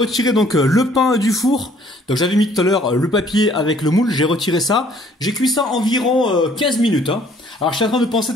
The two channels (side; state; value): both; normal; correlation 0.59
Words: donc le pain du four. Donc j'avais mis tout à l'heure le papier avec le moule, j'ai retiré ça. J'ai cuit ça environ 15 minutes. Hein. Alors je suis en train de penser